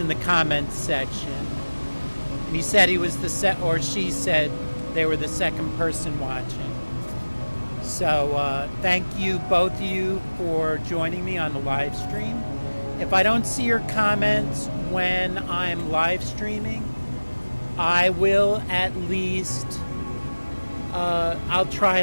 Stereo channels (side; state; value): both; inverted; correlation -1.00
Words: the comments section. And he said he was or she said they were the second person watching. So thank you, both of you, for joining me on the live stream. If I don't see your comments when I'm live streaming, I will at least, I'll try